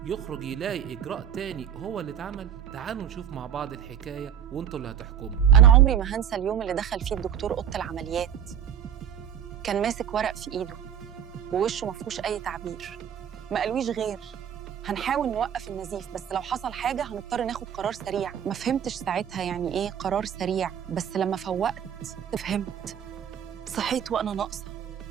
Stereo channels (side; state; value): left; quieter; 9.0 dB